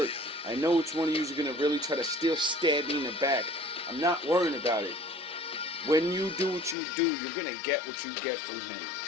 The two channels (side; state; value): right; drops out; at 6.8 s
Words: I know which one of yous are gonna really try to still stab me in the back. I'm not worrying about it. When you do what you do, you're gonna get what you get from him.